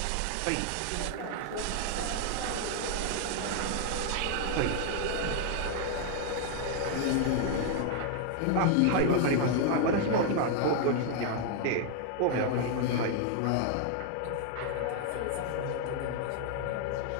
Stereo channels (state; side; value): different; both; correlation 0.00